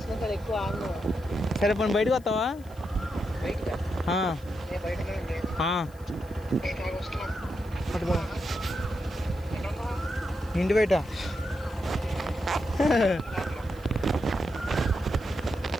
సార్ ఎక్కువ ఆను. సరే పోనీ బయటకు వస్తావా? బయటగా నేను బయటనే పట్టుకో ఇంటి బయట.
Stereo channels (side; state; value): left; noise; hiss, 26 dB below the sound